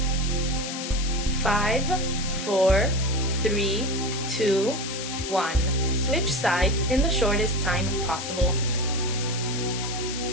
Five, 4, 3, 2, 1. Switch sides in the shortest time possible.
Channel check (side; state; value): left; noise; hiss, 7 dB below the sound